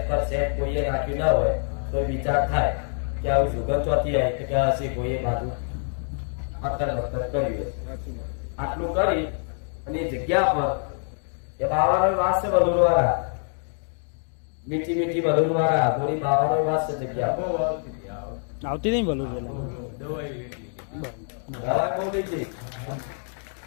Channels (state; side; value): silent; right; 58 dB below the other